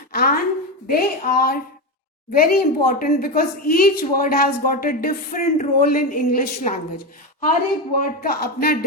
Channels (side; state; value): both; normal; correlation 0.15